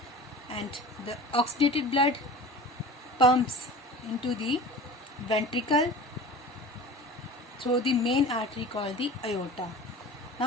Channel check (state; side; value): normal; both; correlation 0.38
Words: and the oxygenated blood pumps into the ventricle through the main artery called the aorta.